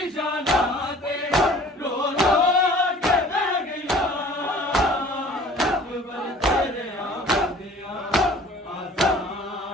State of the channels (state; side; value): normal; both; correlation 0.49